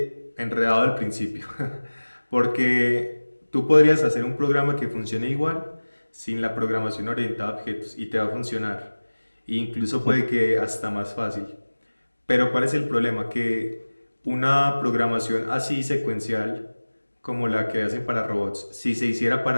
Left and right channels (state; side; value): inverted; both; correlation -1.00